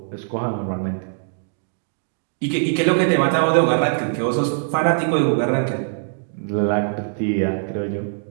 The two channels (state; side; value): silent; left; digital silence